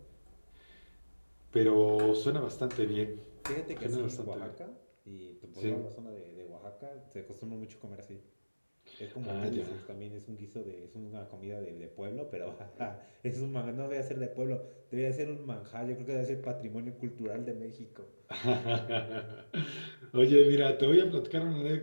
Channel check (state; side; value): inverted; both; correlation -1.00